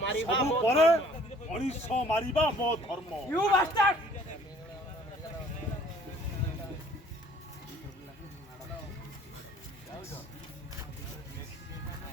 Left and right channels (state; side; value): normal; both; correlation 0.56